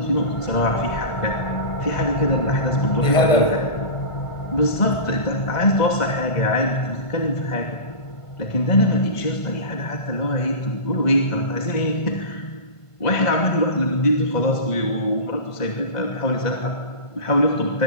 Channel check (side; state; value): right; late; 1.5 ms